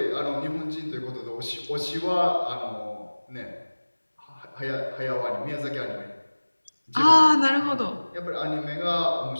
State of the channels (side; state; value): both; inverted; correlation -1.00